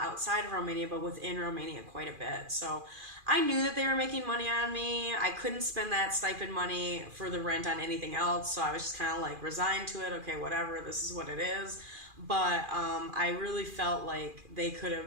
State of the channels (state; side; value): late; left; 2.4 ms